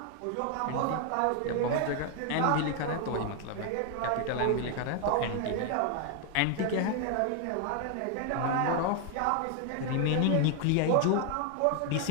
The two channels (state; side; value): different; both; correlation 0.00